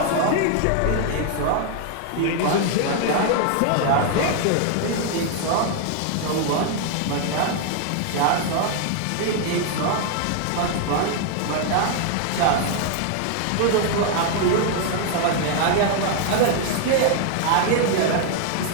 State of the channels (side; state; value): both; different; correlation 0.00